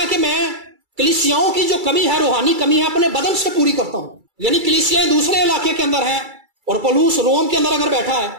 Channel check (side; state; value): left; late; 2.3 ms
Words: کہ میں کلیسیاؤں کی جو کمی ہے, روحانی کمی ہے, اپنے بدن سے پوری کرتا ہوں. یعنی کلیسیاں دوسرے علاقے کے اندر ہیں, اور پولس روم کے اندر اگر بیٹھا ہے